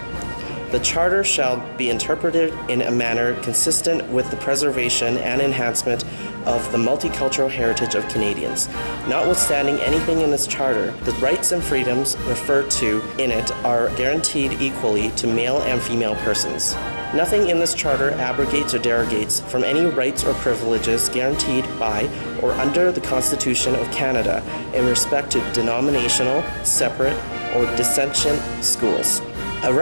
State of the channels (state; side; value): inverted; both; correlation -1.00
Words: The Charter shall be interpreted in a manner consistent with the preservation and enhancement of the multicultural heritage of Canadians. Notwithstanding anything in this Charter, the rights and freedoms referred to in it are guaranteed equally to male and female persons. Nothing in this Charter abrogates or derogates from any rights or privileges guaranteed by or under the Constitution of Canada in respect to denominational, separate, or dissentient schools. A